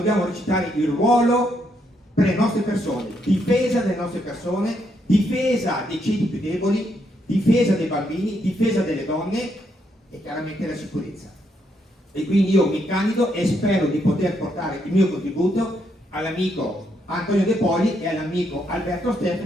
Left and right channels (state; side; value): normal; both; correlation 0.76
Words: recitare il ruolo per le nostre persone, difesa delle nostre persone, difesa dei ceti più deboli, difesa dei bambini, difesa delle donne e chiaramente la sicurezza. E quindi io mi candido e spero di poter portare il mio contributo all'amico Antonio De Poli e all'amico Alberto